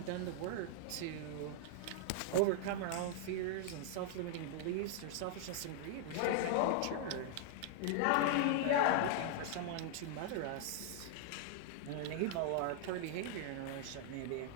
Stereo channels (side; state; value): both; different; correlation 0.00